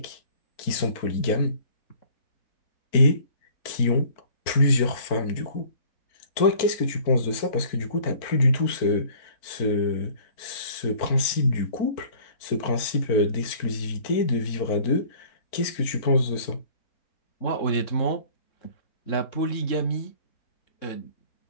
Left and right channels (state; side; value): late; right; 4.4 ms